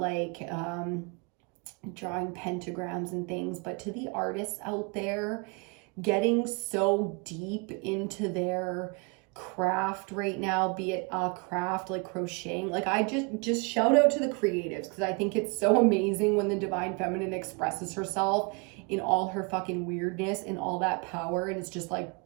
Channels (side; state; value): left; quieter; 32.3 dB